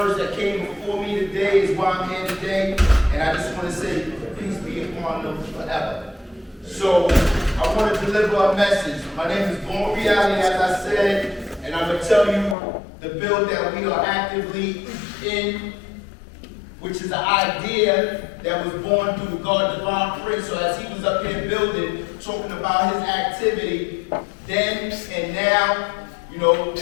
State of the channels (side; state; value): right; drops out; at 12.6 s